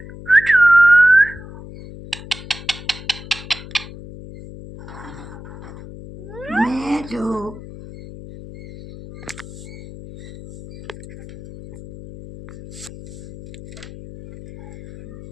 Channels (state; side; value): noise; left; hum, 15 dB below the sound